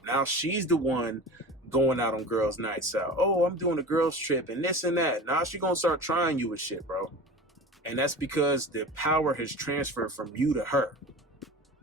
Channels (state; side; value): normal; both; correlation 0.33